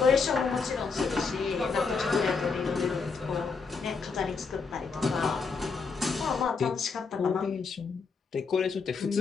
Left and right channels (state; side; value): quieter; right; 4.9 dB